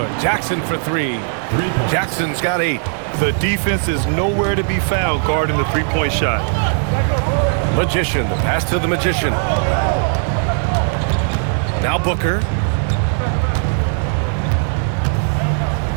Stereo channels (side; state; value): left; silent; 61 dB below the other